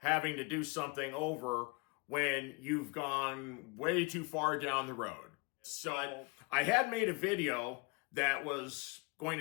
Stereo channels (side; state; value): right; quieter; 29.0 dB